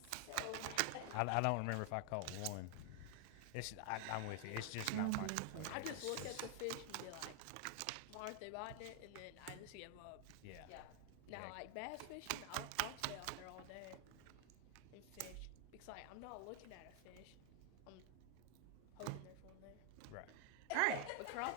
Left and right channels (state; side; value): different; both; correlation 0.00